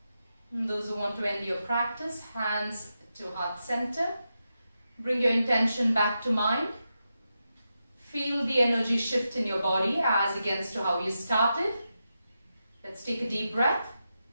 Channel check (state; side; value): inverted; both; correlation -0.88